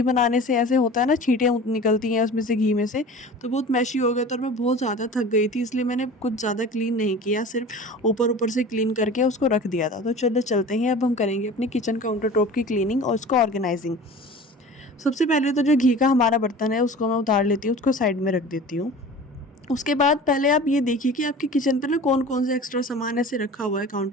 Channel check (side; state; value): both; normal; correlation 0.39